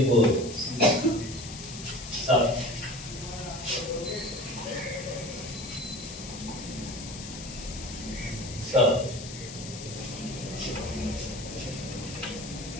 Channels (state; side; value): noise; left; hiss, 11 dB below the sound